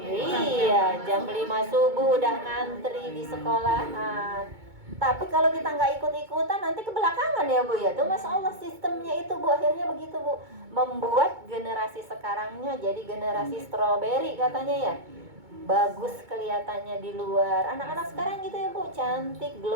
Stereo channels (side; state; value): left; late; 2.2 ms